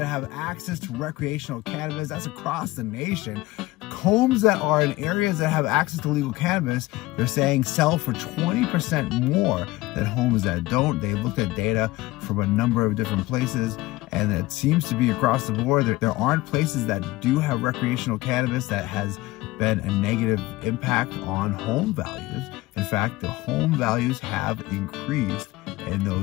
have access to recreational cannabis. That's across the nation. Homes that are in areas that have access to legal cannabis, they're saying sell for 20% more than homes that don't. They've looked at data from a number of different places, and it seems to be across the board. There aren't places that do have recreational cannabis that has been a negative impact on home values. In fact, the home values have increased in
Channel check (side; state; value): right; quieter; 19.2 dB